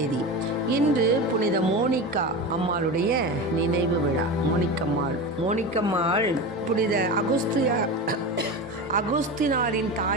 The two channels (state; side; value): normal; both; correlation 0.25